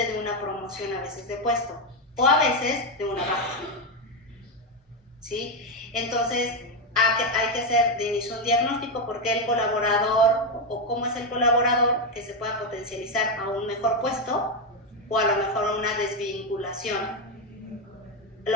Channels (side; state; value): both; normal; correlation 0.07